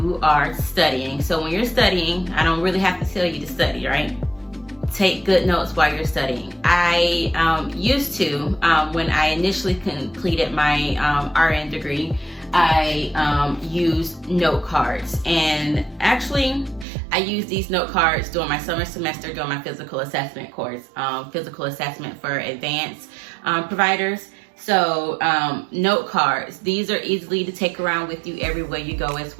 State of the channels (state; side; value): drops out; left; at 16.9 s